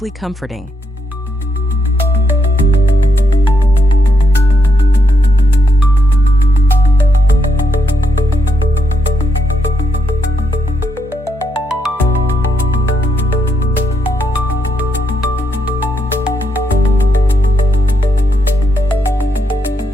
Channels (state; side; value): normal; both; correlation 0.79